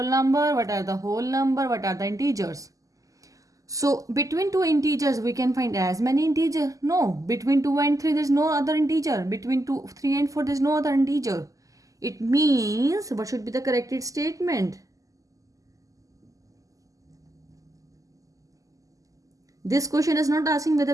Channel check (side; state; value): left; late; 0.17 ms